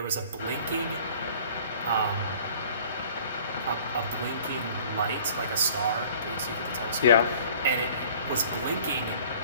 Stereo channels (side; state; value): both; inverted; correlation -0.50